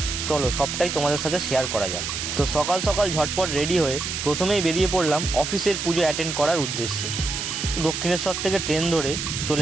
চলো সবটাই তোমাদের সাথে শেয়ার করা যাক। তো সকাল সকাল ঝটপট রেডি হয়ে প্রথমেই বেরিয়ে পড়লাম অফিসের পুজো অ্যাটেন্ড করার উদ্দেশ্যে। দক্ষিণেশ্বর থেকে ট্রেন ধরে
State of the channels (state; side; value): noise; right; hiss, 4 dB below the sound